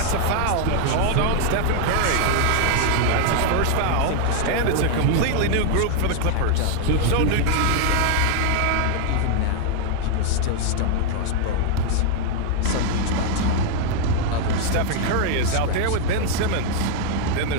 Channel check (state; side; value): different; both; correlation 0.00